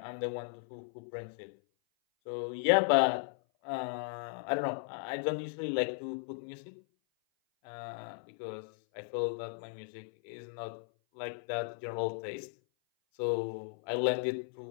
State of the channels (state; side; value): silent; right; 54 dB below the other